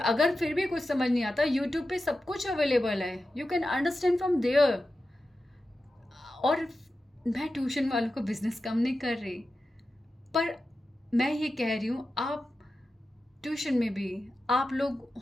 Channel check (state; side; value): normal; both; correlation 0.92